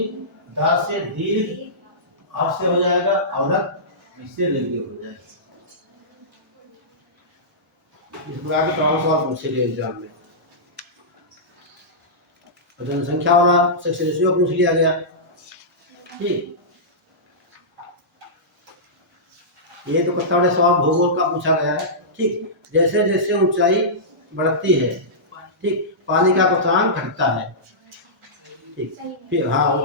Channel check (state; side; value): normal; both; correlation -0.16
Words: दा से दीर्घ, आप से हो जाएगा अवरक्त, इससे रेडियो हो जाएगा। इस प्रकार के तमाम सवाल पूछे गए एग्जाम में। जनसंख्या वाला सेक्स रेशियो पूछ लिया गया, ठीक, ये तो पत्ता वाले सवाल भूगोल का पूछा गया है, ठीक, जैसे जैसे ऊंचाई बढ़ती है, ठीक, पानी का क्वथनांक घटता है, ठीक, फिर हाँ